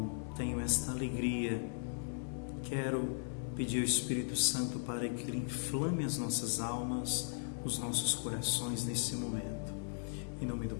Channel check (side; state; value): right; silent; digital silence